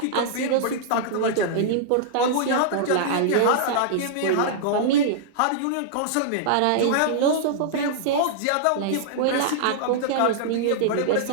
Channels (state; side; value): different; both; correlation -0.02